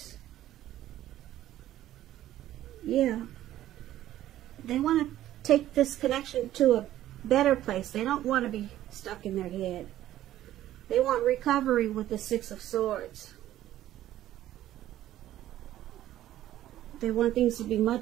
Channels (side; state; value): left; quieter; 13.3 dB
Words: Yeah. They want to take this connection to a better place. They don't want to be stuck in their head. They want recovery with the Six of Swords. They want things to be